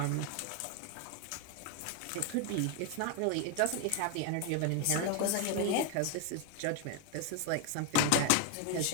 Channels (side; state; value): both; different; correlation 0.01